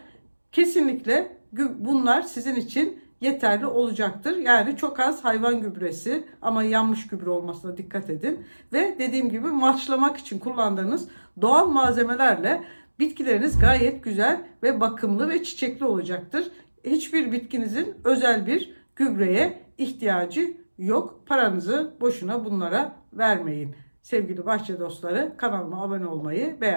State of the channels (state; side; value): inverted; both; correlation -1.00